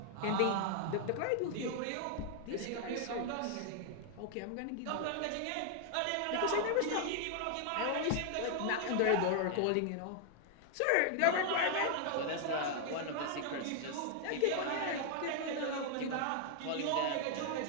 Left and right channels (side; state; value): both; different; correlation 0.00